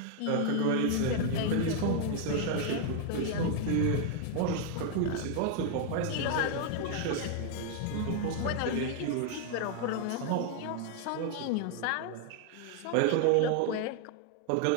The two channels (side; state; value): both; different; correlation 0.00